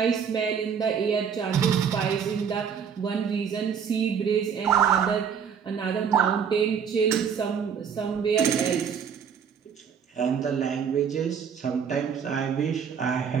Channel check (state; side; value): quieter; left; 7.2 dB